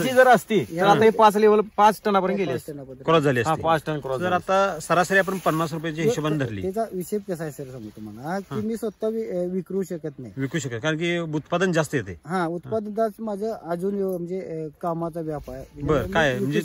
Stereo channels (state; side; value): identical; both; correlation 1.00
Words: जर असती तर आता हे 5 लेवल 5 टनापर्यंत गेले असते. क्रॉस झाली हा, असते. 5 टन क्रॉस जर आता सरासरी आपण 50 रुपयाच्या हिशोबाने धरली, त्याचा विषय कसा आहे सर सांगू तुम्हाला, की मी स्वतः विकरू शकत नाही. विकू शकेल कारण की उत्पादन जास्त येते. हा, उत्पादनात माझं अजून म्हणजे कामाचा व्याप आहे. बरं, काय मी म्हणजे